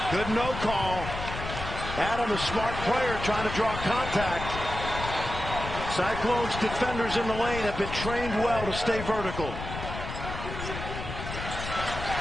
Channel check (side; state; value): left; noise; rumble, 7 dB below the sound